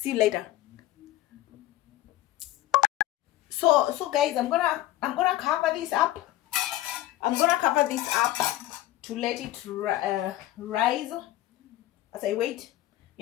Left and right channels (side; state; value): right; quieter; 15.4 dB